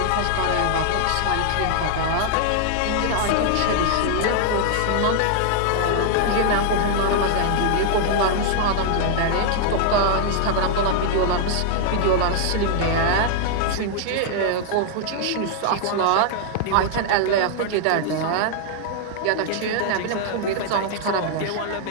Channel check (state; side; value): different; both; correlation 0.00